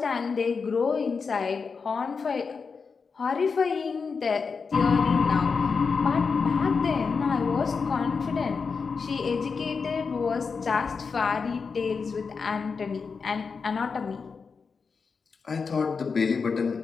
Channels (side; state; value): right; quieter; 5.2 dB